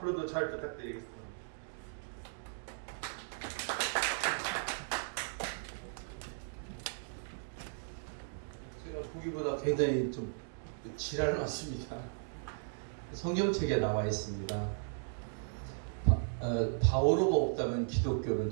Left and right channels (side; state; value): left; silent; digital silence